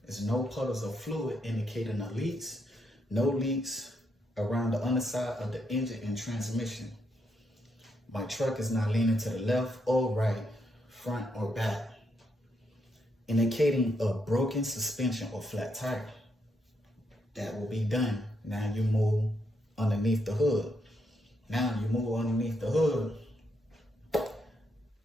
is no puddles of fluid indicating the leaks, no leaks around the underside of the engine and transmission. My truck is not leaning to the left or right, front or back, indicating a broken suspension or flat tire. That will be done. Now you move underneath the hood. Now you move underneath the hood.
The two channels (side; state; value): both; normal; correlation 0.79